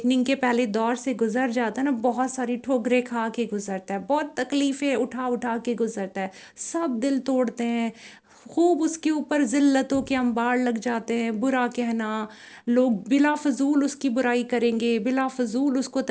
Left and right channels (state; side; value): identical; both; correlation 1.00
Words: کے پہلے دور سے گزر جاتا ہے نا، بہت ساری ٹھوکریں کھا کے گزرتا ہے، بہت تکلیفیں اٹھا اٹھا کے گزرتا ہے، سب دل توڑتے ہیں، خوب اس کے اوپر ذلتوں کے انبار لگ جاتے ہیں، برا کہنا، لوگ بلا فضول اس کی برائی کریں گے، بلا فضول اس کو